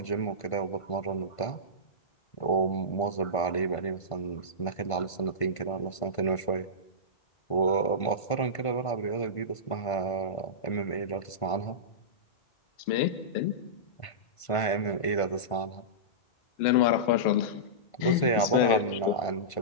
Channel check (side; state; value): right; late; 1.5 ms